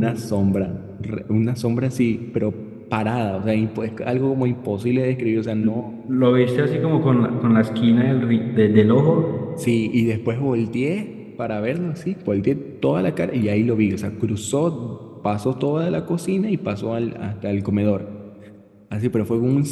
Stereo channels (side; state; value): both; identical; correlation 1.00